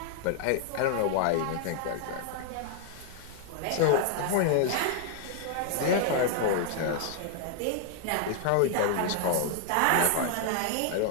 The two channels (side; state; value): both; different; correlation 0.00